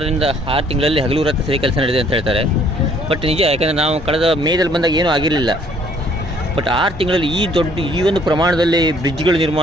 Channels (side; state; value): both; normal; correlation 0.61